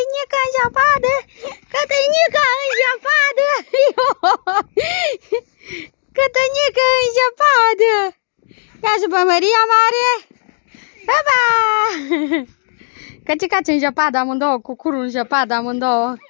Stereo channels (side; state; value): right; silent; digital silence